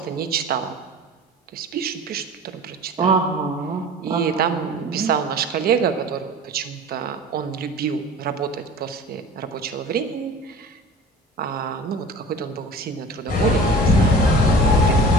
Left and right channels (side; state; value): both; normal; correlation 0.39